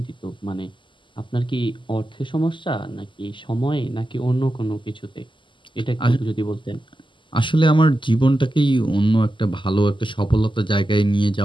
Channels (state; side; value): late; right; 0.24 ms